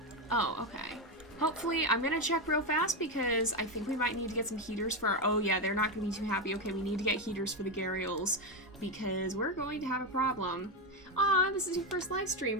Oh, okay. Hopefully, I'm gonna check real fast because I think we might need to get some heaters for our... Oh yeah, they're not gonna be too happy. Okay, we need to get heaters for the Gharials because we're going to have a problem. Aw, this is your first live stream.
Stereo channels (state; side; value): normal; both; correlation 0.10